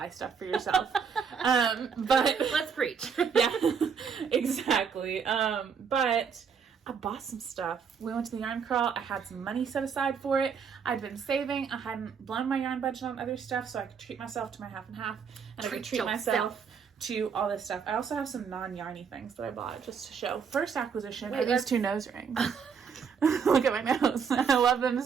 stuff for yourself. But let's preach. Yeah, exactly. But I bought some stuff. We went to the yarn crawl. I had some money set aside for it. I'd been saving. I hadn't blown my yarn budget on other stuff, so I could treat myself to my half and half, and I could treat myself to all this stuff. I also have some non-yarny things that I bought just to show. First acquisition are these 2 nose rings. Look at my nose. I love them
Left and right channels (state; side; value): quieter; left; 6.4 dB